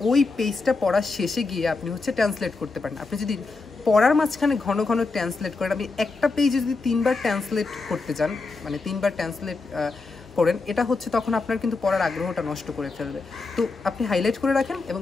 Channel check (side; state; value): right; quieter; 3.9 dB